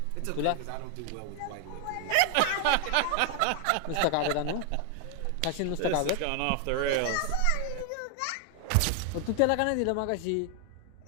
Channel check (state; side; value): different; both; correlation 0.00